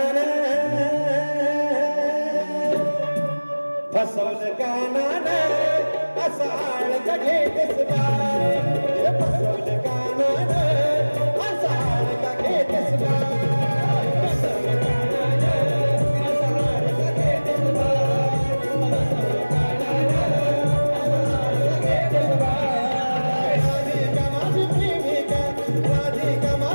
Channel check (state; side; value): inverted; both; correlation -1.00